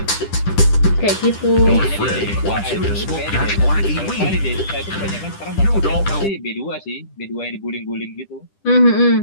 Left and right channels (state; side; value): late; right; 10 ms